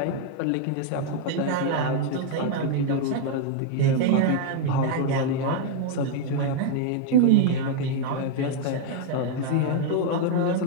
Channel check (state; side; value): different; both; correlation 0.00